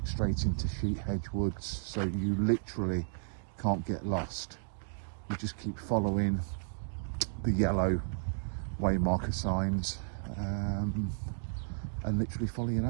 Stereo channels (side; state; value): left; silent; digital silence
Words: straight into Hedges Woods. So you literally can't get lost. You just keep following the yellow way marker signs and literally follow your